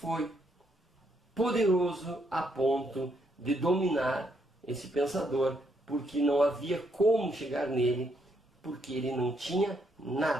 poderoso a ponto de dominar esse pensador, porque não havia como chegar nele, porque ele não tinha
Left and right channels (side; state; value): both; normal; correlation 0.75